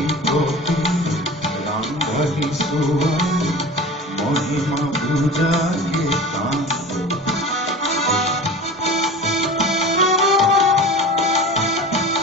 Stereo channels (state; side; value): normal; both; correlation 0.36